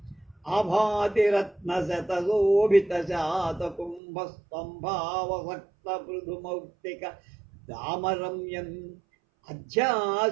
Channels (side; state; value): left; drops out; at 4.0 s